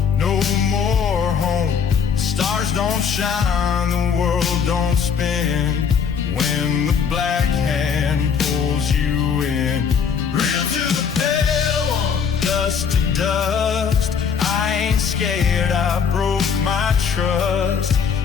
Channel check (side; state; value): right; quieter; 6.7 dB